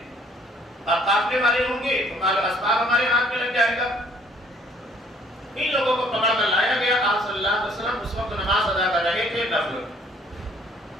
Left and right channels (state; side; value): normal; both; correlation 0.60